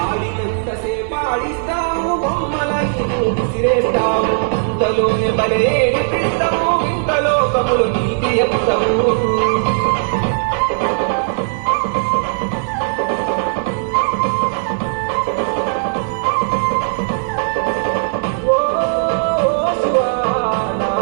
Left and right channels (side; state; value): left; silent; 64 dB below the other